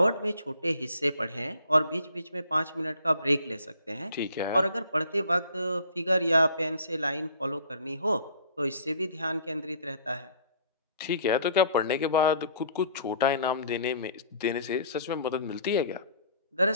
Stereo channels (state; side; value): inverted; both; correlation -0.53